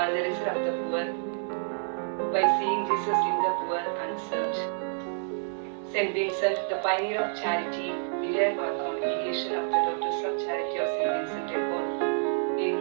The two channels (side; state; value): left; silent; 59 dB below the other